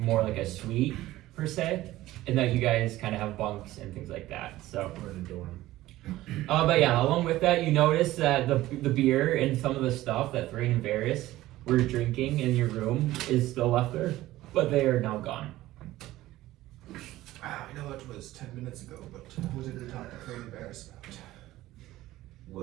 like a suite per se, and that you guys kind of have bunks and things like that. So We're in a dorm. but yeah, along with that, you notice that the beer and some of the stuff that Thrain and Varys were drinking in your room is still left there, but they are now gone. I know it was 10 minutes ago, but what did we talk to Thrain and Varys about?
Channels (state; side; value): quieter; left; 16.2 dB